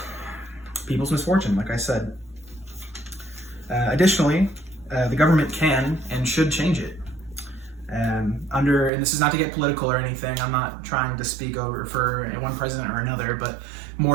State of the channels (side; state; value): left; drops out; at 8.9 s